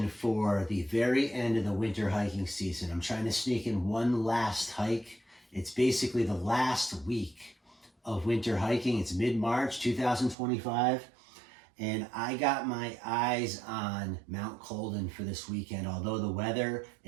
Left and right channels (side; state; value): left; drops out; at 10.4 s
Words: for the very end of the winter hiking season. I'm trying to sneak in one last hike. It's basically the last week of winter hiking. It's mid-March 2025, and I got my eyes on Mount Colden for this weekend. Although the weather